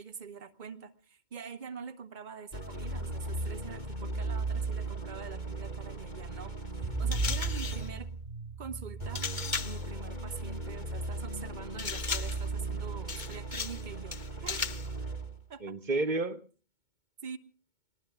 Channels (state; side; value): late; left; 2.2 ms